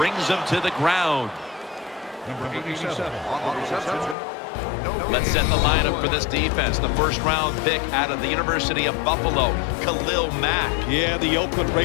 him to the ground. Number 87 on the reception, Let's set the lineup for this defense. The first-round pick out of the University of Buffalo, Khalil Mack. Yeah, the Oakland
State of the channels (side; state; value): right; drops out; at 4.2 s